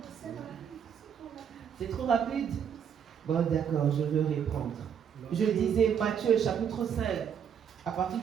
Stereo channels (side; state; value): left; quieter; 8.0 dB